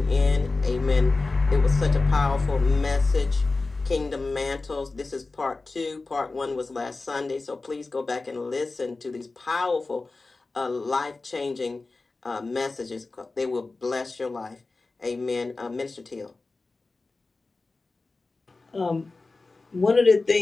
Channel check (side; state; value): right; quieter; 3.6 dB